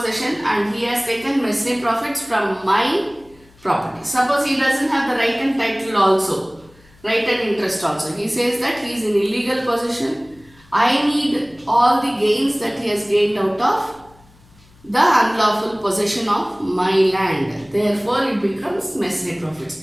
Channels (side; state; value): left; noise; hum, 28 dB below the sound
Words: and he has taken mesne profits from my property. Suppose he doesn't have the right and title also, right and interest also. He says that he is in illegal possession. I need all the gains that he has gained out of the unlawful possession of my land. Therefore, it becomes mesne profits.